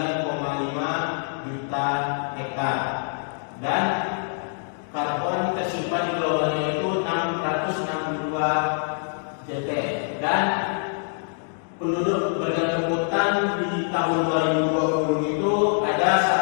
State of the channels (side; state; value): right; silent; digital silence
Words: juta hektar dan karbon tersimpan di globalnya itu 662 JT dan penduduk bergantung hutan di tahun 2020 itu